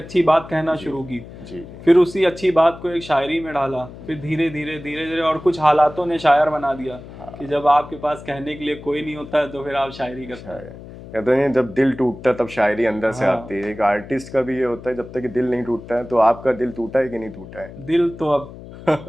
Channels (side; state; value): left; noise; hum, 15 dB below the sound